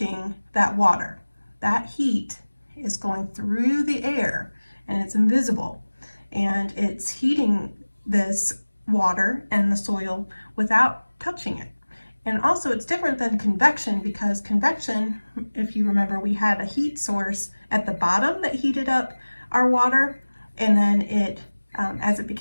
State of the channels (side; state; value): both; inverted; correlation -1.00